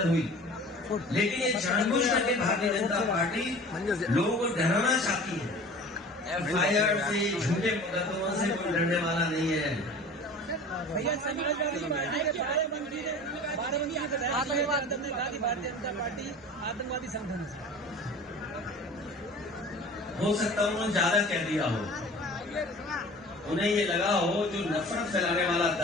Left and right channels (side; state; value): both; normal; correlation 0.41